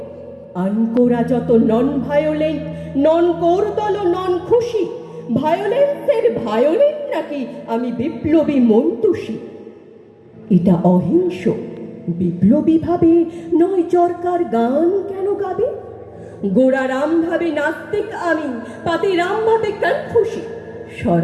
আনকোরা যত নন ভায়োলেন্ট, নন কোরদল নন খুশি। ভায়োলেন্সের ভায়োলেন্ট নাকি আমি বিপ্লবী মন্তুষী। এটা অহিংস বিপ্লবী ভাবে নয় চরকার গান কেন গাবে। গোড়া রাম ভাবে নাস্তিক আমি, পাতি রাম ভাবে কনফুসি।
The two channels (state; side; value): identical; both; correlation 1.00